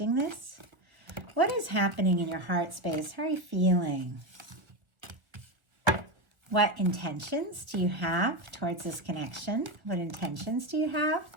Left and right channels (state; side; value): late; left; 1.4 ms